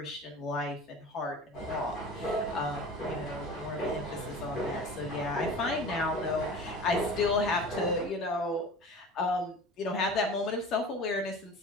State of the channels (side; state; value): both; normal; correlation 0.37